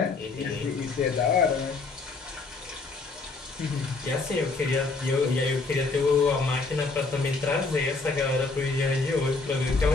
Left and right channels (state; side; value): quieter; right; 3.9 dB